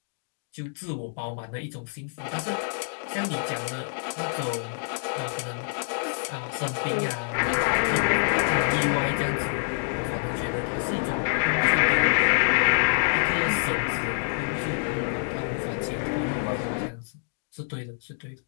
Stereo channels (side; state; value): right; silent; digital silence